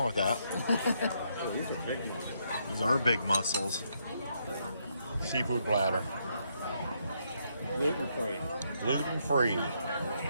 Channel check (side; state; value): both; inverted; correlation -0.76